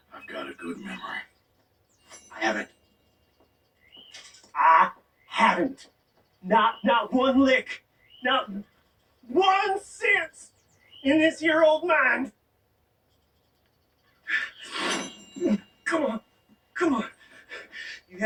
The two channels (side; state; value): both; identical; correlation 1.00